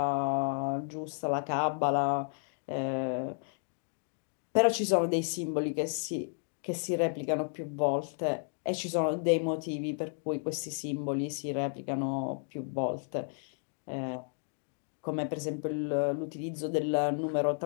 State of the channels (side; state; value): right; silent; 56 dB below the other